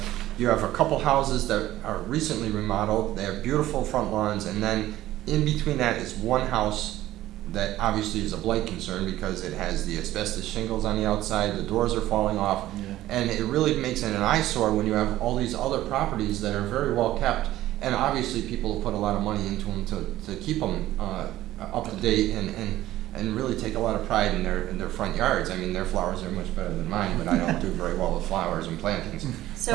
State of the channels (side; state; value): left; quieter; 14.7 dB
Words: have a couple houses that are recently remodeled. They have beautiful front lawns, and then in between that is one house that obviously is a blight concern because it has the asbestos shingles on the outside, the doors are falling off, and it really makes it an eyesore when you have all these other properties that are very well kept, and obviously people have put a lot of money into them to keep them up to date and really take a lot of pride in their front yards. I mean, their flowers are much better than mine, but I don't do very well with flowers and plantings.